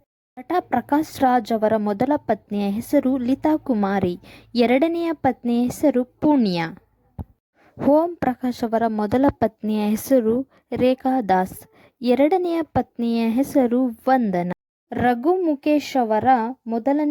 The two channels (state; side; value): identical; both; correlation 1.00